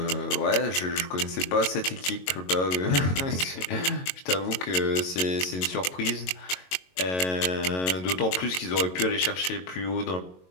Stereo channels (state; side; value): late; right; 22 ms